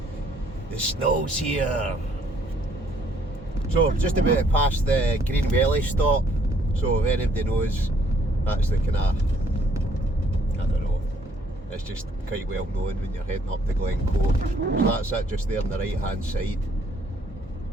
the snow's here. So just about past the Green Valley stop. So if anybody knows, that's the kind of, I don't know, it's just quite well known when you're heading up to Glen Coe. So that's it just there on the right hand side.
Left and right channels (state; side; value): normal; both; correlation 0.65